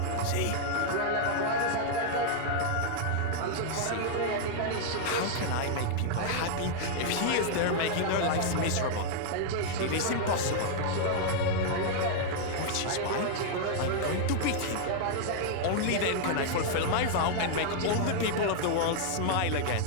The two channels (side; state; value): both; different; correlation -0.01